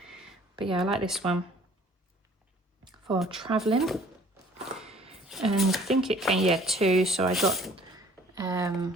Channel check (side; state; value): both; normal; correlation 0.54